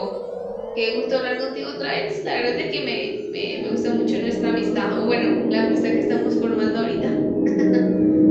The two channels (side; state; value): both; identical; correlation 1.00